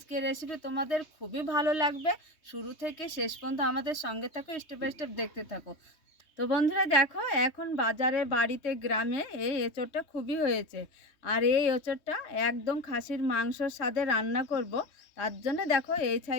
রেসিপি তোমাদের খুবই ভালো লাগবে। শুরু থেকে শেষ পর্যন্ত আমাদের সঙ্গে থাকো, স্টেপ বাই স্টেপ দেখতে থাকো। তো বন্ধুরা দেখো, এখন বাজারে বাড়িতে গ্রামে এই এঁচোড়টা খুবই হয়েছে। আর এই এঁচোড়টা একদম খাসির মাংসর স্বাদে রান্না করব। তার জন্য দেখো এই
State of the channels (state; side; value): late; right; 3.2 ms